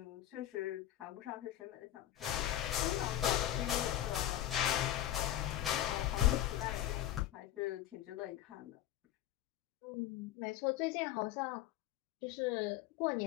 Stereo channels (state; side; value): quieter; right; 12.9 dB